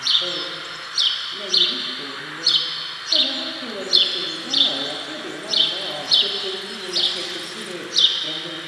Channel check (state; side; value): identical; both; correlation 1.00